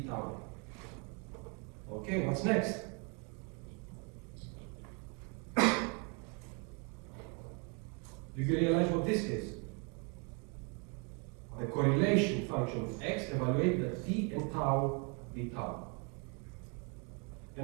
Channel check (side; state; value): left; quieter; 34.9 dB